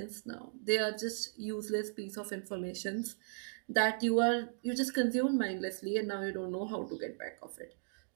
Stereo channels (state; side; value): silent; left; digital silence